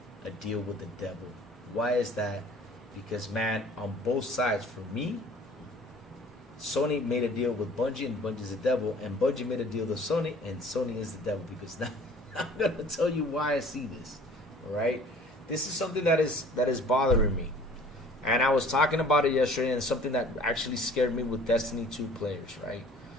a deal with the devil. Why is that? Because, man, on both sides, for me, Sony made a deal with Bungie, and Bungie's the devil. And Bungie made a deal with Sony, and Sony is the devil. Because now I'm going to tell you why I see this. All right? This is something that is bothering me. And I was talking about it yesterday, and something that actually scared me with Destiny 2 players, right?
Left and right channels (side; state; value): both; normal; correlation 0.50